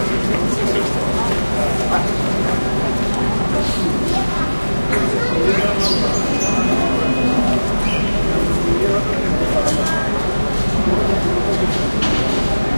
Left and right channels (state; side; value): inverted; both; correlation -1.00